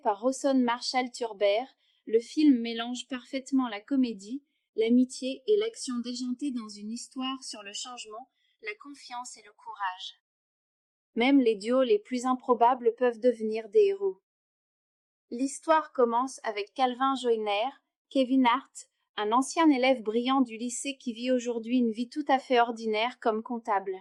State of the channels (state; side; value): identical; both; correlation 1.00